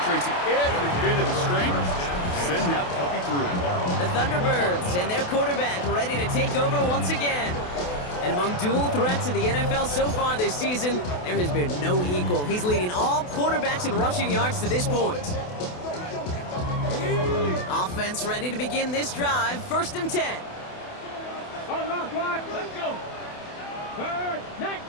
every bit of the strength, to send that puppy through. The Thunderbirds and their quarterback ready to take over once again. And among dual threats in the NFL so far this season, there has been no equal. He's leading all quarterbacks in rushing yards to this point. Offense ready to begin this drive. 1st and 10. Unlock line, let's go. 3rd,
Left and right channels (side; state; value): right; late; 28 ms